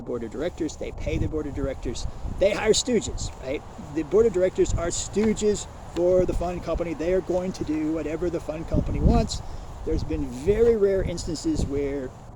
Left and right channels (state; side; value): identical; both; correlation 1.00